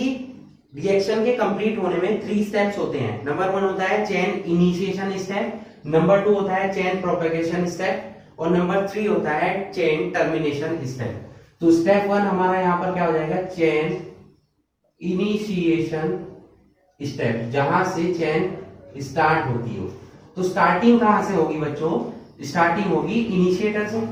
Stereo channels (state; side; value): identical; both; correlation 1.00